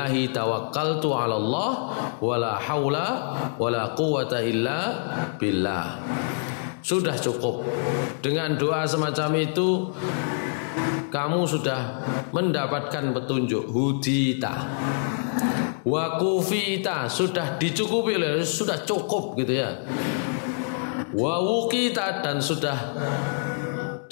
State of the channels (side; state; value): right; silent; digital silence